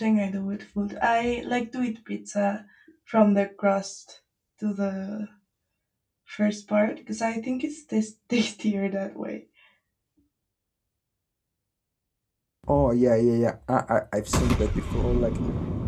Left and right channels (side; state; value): both; identical; correlation 1.00